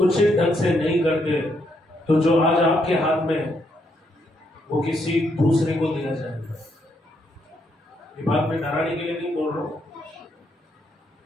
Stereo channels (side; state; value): both; normal; correlation 0.76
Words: ढंग से नहीं करते, तो जो आज आपके हाथ में वो किसी दूसरे को दिया जाएगा। ये बात मैं डराने के लिए नहीं बोल रहा हूं,